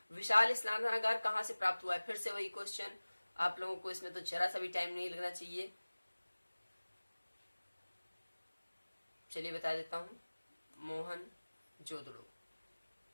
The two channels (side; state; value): both; inverted; correlation -1.00